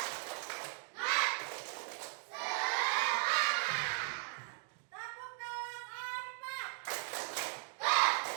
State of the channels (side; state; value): left; silent; 53 dB below the other